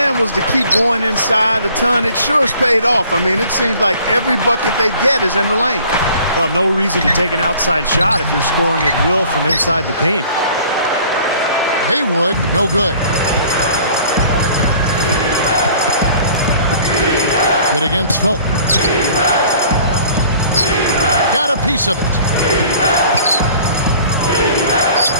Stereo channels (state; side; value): inverted; both; correlation -0.51